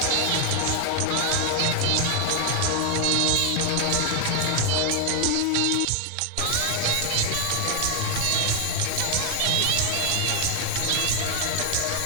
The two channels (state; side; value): different; both; correlation 0.00